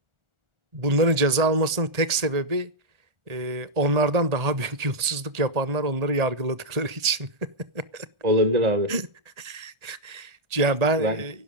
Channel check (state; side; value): late; left; 1.8 ms